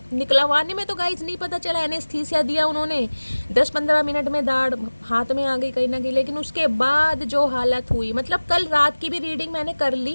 निकलवाने में तो गाइस नहीं पता चला, एनेस्थीसिया दिया उन्होंने, 10-15 मिनट में दाढ़ हाथ में आ गई कहीं ना कहीं। लेकिन उसके बाद जो हालत हुई, मतलब कल रात की भी रीडिंग मैंने कर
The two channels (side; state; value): both; inverted; correlation -1.00